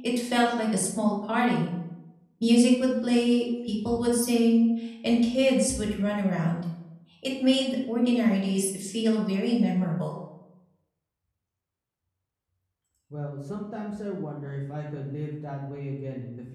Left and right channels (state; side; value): identical; both; correlation 1.00